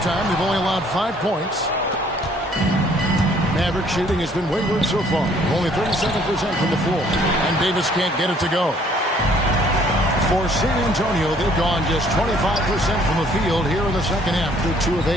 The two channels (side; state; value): both; normal; correlation 0.60